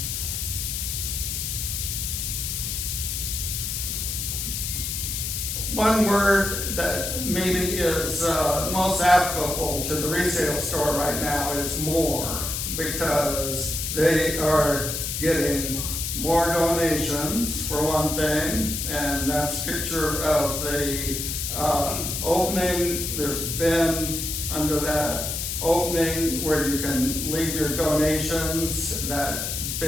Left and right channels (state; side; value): noise; left; hiss, 3 dB below the sound